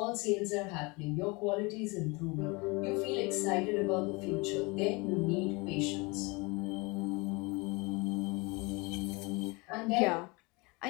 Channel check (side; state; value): right; quieter; 26.9 dB